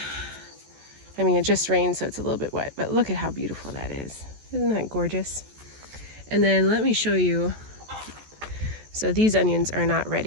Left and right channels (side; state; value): left; late; 14 ms